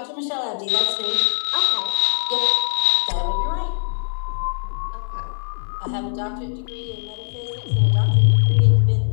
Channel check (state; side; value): silent; right; 56 dB below the other